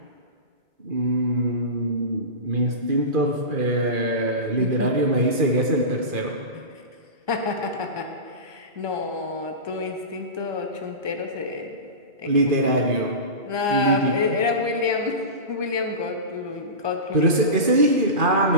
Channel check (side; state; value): left; late; 2.4 ms